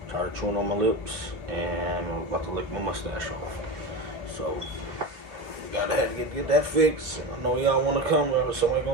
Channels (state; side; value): late; left; 2.8 ms